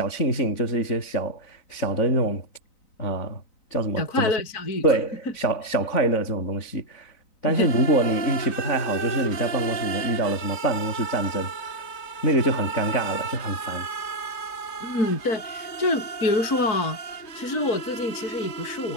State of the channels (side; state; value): right; late; 3.9 ms